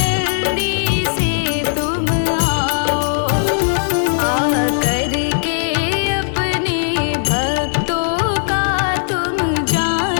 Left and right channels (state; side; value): silent; right; digital silence